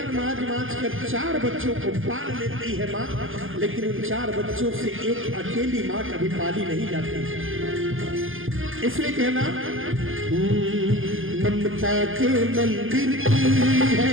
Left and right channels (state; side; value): late; left; 0.59 ms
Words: मांज मांज कर 4 बच्चों को पाल लेती है माँ, लेकिन उन 4 बच्चों से एक अकेली माँ कभी पाली नहीं जाती। इसलिए कहना, ममता के मंदिर की है